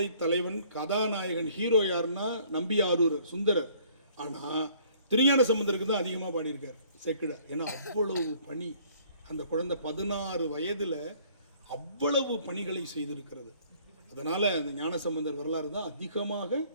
தலைவன் கதாநாயகன் ஹீரோ யாருன்னா நம்பியாரூர் சுந்தரர். ஆனால் திருஞான சம்பந்தருக்கு தான் அதிகமாக பாடியிருக்கார் சேக்கிழார். ஏன்னா அவ்வளவு பணி, அந்த குழந்தை 16 வயதில் அவ்வளவு பணிகளை செய்திருக்கிறது. அதனால் அந்த ஞானசம்பந்தர் வரலாறு தான் அதிகமாக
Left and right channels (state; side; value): inverted; both; correlation -0.58